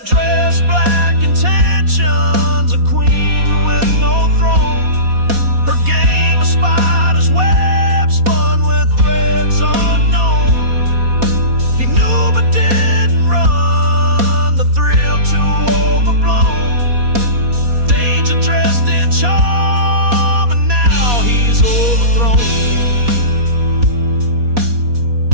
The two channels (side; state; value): left; late; 4.2 ms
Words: dress, black intentions, a queen with no throne. Her game of spiders web spun with threads unknown. He knew but didn't run, the thrill too overblown. Danger dressed in charm, and now he's overthrown.